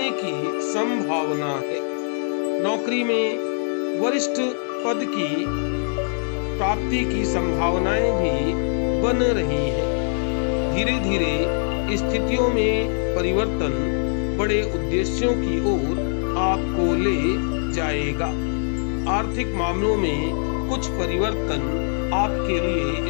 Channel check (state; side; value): silent; right; digital silence